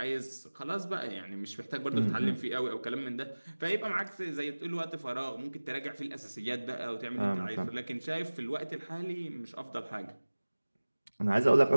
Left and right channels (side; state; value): both; inverted; correlation -1.00